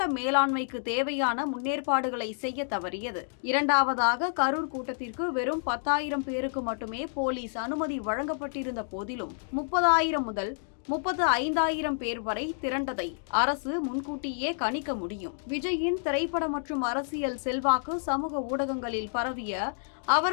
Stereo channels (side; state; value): right; silent; digital silence